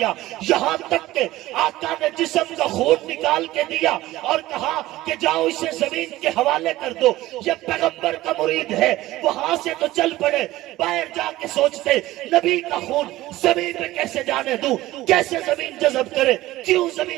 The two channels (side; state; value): left; quieter; 16.7 dB